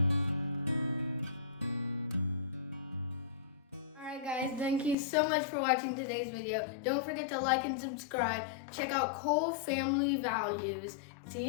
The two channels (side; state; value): right; drops out; at 5.0 s